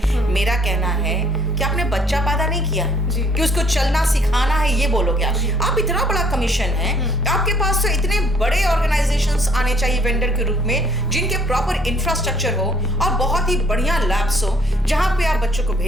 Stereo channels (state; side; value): normal; both; correlation 0.62